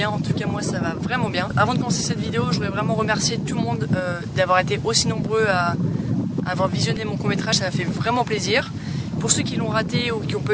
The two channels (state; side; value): identical; both; correlation 1.00